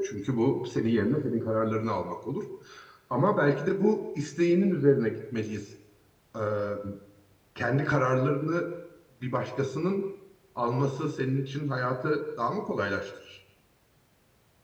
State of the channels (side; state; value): both; identical; correlation 1.00